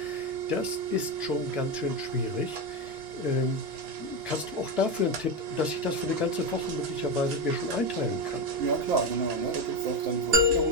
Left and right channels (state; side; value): late; left; 2.9 ms